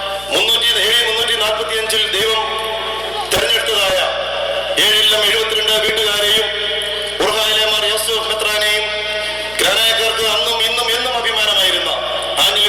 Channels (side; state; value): left; noise; hum, 20 dB below the sound